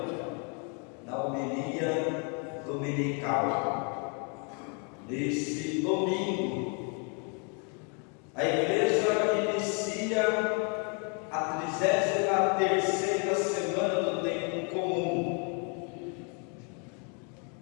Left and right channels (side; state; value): right; quieter; 37.6 dB